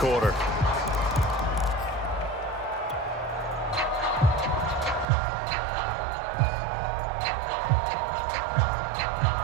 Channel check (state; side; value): drops out; left; at 5.1 s